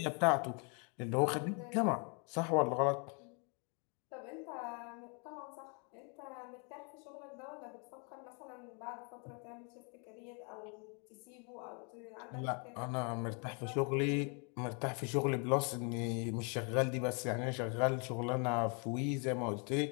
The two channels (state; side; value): quieter; right; 36.5 dB